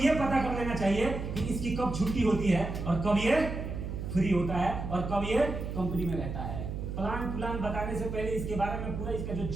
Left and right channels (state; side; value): noise; right; hum, 5 dB below the sound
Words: पता कर लेना चाहिए कि इसकी कब छुट्टी होती है और कब ये फ्री होता है और कब ये कंपनी में रहता है। प्लान बताने से पहले इसके बारे में पूरा इसका जो